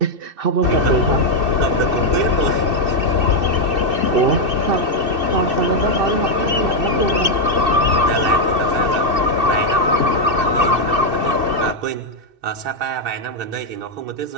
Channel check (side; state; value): left; late; 2.6 ms